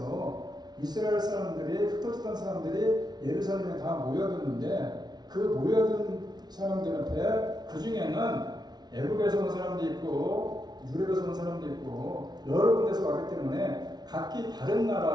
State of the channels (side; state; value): left; late; 0.19 ms